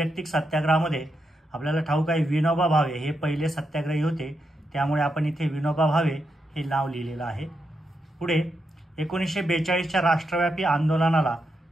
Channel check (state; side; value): normal; both; correlation 0.84